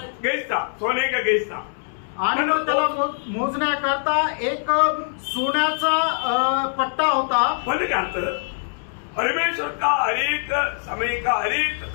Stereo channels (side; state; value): right; silent; digital silence